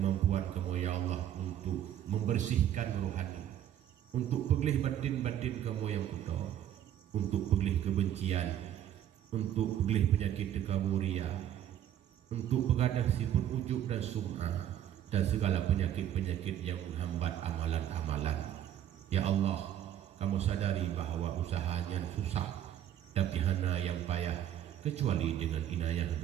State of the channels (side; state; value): left; quieter; 10.9 dB